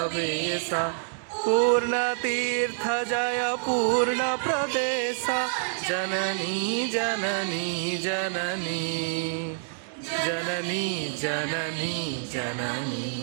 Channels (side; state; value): left; silent; digital silence